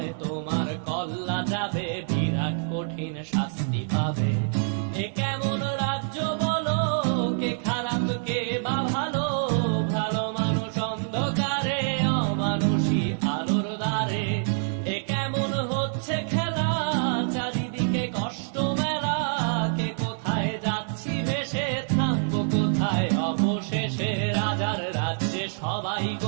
তোমার কল্লা যাবে, বিরাট কঠিন শাস্তি পাবে। এ কেমন রাজ্য বলো, কে খারাপ কে বা ভালো, ভালো মানুষ অন্ধকারে, অমানুষী আলোর দ্বারে। এ কেমন হচ্ছে খেলা, চারিদিকে কষ্ট মেলা, কে কোথায় যাচ্ছি ভেসে, থামবো কোথায় অবশেষে। রাজার রাজ্যে সবাই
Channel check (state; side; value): silent; left; digital silence